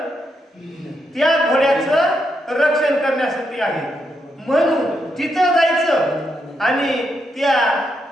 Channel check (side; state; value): both; normal; correlation 0.81